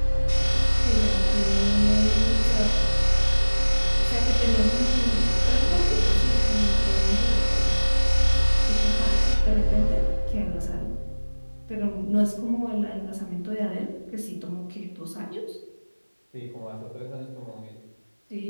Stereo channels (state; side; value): inverted; both; correlation -1.00